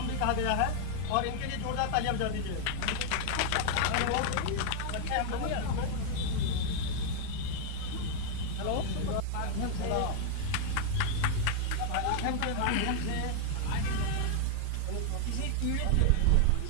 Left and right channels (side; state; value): both; different; correlation 0.00